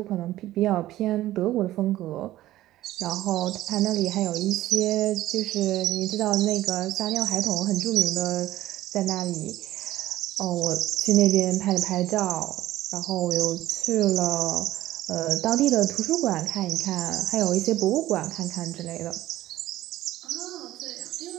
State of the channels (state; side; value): quieter; left; 15.1 dB